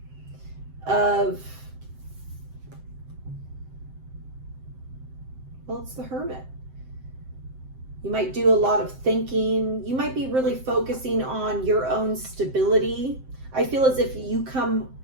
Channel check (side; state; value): left; late; 7.7 ms